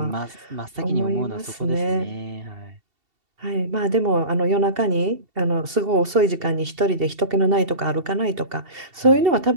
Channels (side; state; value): left; late; 2.7 ms